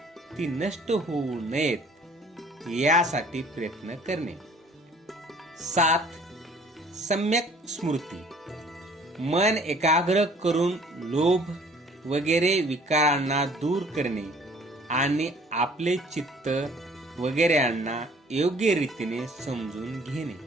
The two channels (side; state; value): both; normal; correlation 0.54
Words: ती नष्ट होऊ नयेत यासाठी प्रयत्न करणे. 7. सम्यक स्मृती. मन एकाग्र करून लोभ वगैरे विकारांना दूर करणे आणि आपले चित्त वगैरेंना योग्य रीतीने समजून घेणे.